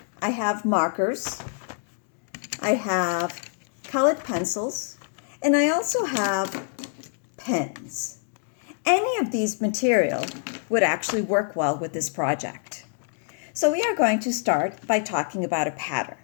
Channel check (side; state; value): right; silent; 61 dB below the other